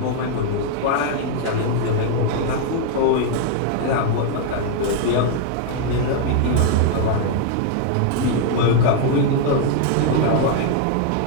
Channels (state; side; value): different; both; correlation 0.00